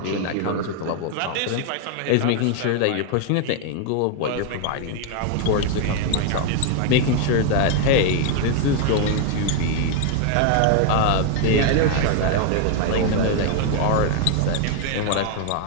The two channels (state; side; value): different; both; correlation 0.00